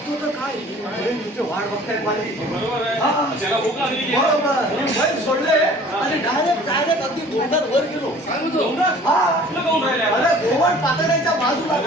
तर काय अरे तुझे वाट बघतायत माझी. बरोबर आहे. हा. त्याला भूक लागली की बरोबर. बैल सोडले आणि डायरेक्ट अगदी गोंडात वर गेलो. काय म्हणतो? डोंगरात? हा. तुला काहून राहिलाय? अरे गोवण पातळ्यांच्या बाजूला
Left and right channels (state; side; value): normal; both; correlation 0.49